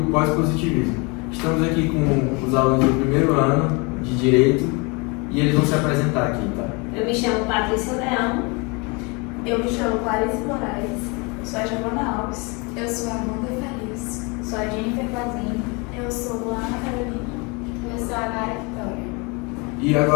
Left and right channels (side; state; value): right; quieter; 29.5 dB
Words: pós-positivismo. Estamos aqui com os alunos do primeiro ano de Direito e eles vão se apresentar aqui, tá? Eu me chamo Patrícia Leão. Eu me chamo Clarice Moraes. Sou a Giovana Alves. Eu sou a Amanda Feliz. Sou a Jennifer Flazinho. Eu sou Luana Carolina. Eu sou a Nara Vitória. E